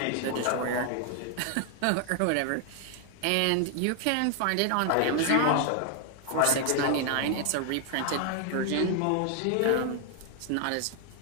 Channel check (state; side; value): different; both; correlation 0.00